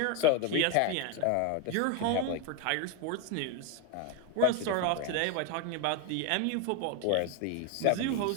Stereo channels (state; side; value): different; both; correlation 0.01